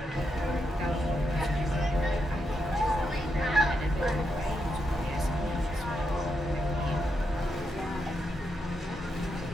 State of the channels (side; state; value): both; normal; correlation 0.83